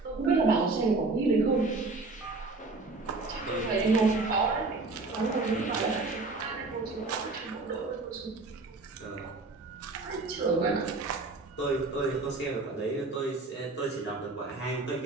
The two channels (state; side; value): quieter; left; 3.5 dB